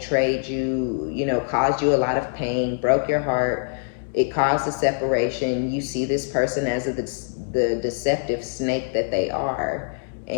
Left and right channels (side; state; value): right; silent; 63 dB below the other